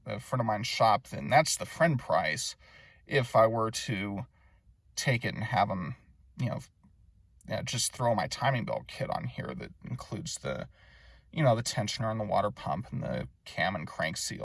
friend of mine's shop. Then that's the friend price if I were to take it and have them, just throw my timing belt kit on here that includes the tensioner and the water pump and the cam and crank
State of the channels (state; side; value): identical; both; correlation 1.00